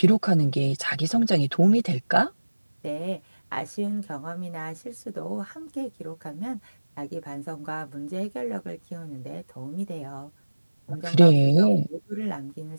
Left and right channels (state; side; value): inverted; both; correlation -1.00